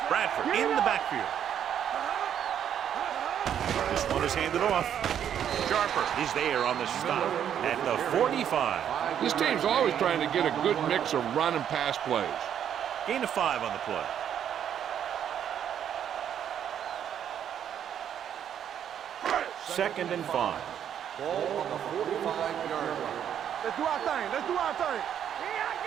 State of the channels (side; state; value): left; quieter; 9.3 dB